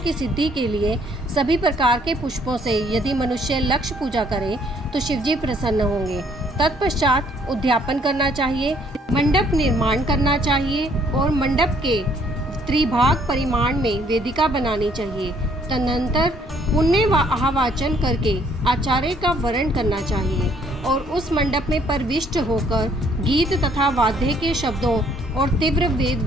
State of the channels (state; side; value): normal; both; correlation 0.64